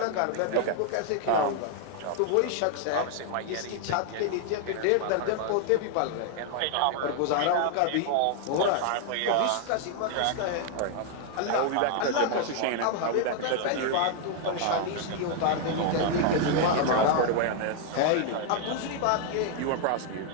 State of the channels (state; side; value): different; both; correlation 0.00